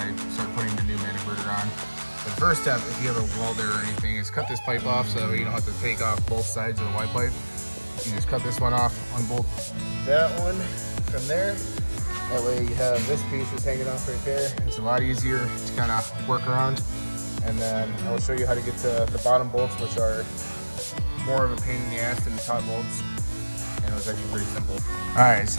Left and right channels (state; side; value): inverted; both; correlation -1.00